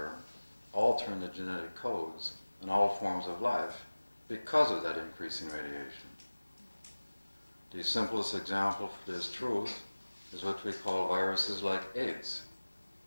altering the genetic codes in all forms of life because of that increasing radiation. The simplest example for this truth is what we call viruses like AIDS.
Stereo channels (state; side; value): inverted; both; correlation -1.00